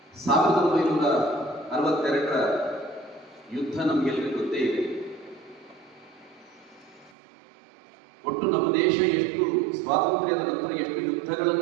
1962ರ ಯುದ್ಧ ನಮಗೆಲ್ಲರಿಗೂ ಗೊತ್ತೇ ಇದೆ. ಒಟ್ಟು ನಮ್ಮ ದೇಶ ಎಷ್ಟು ಸ್ವಾತಂತ್ರ್ಯದ ನಂತರ ಎಷ್ಟು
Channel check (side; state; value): left; drops out; at 7.1 s